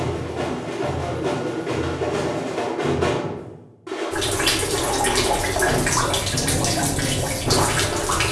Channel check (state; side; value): identical; both; correlation 1.00